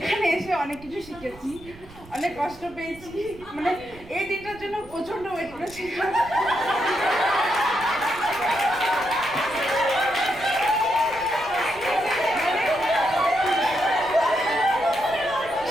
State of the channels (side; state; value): right; noise; rumble, 20 dB below the sound